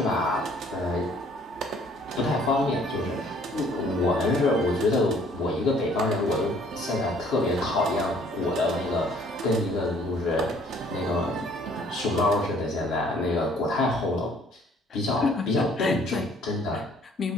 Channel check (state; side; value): normal; both; correlation 0.59